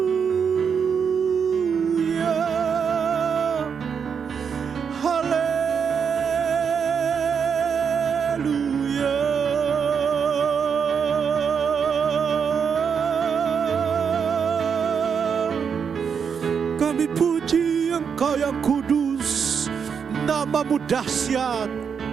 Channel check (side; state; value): left; quieter; 6.7 dB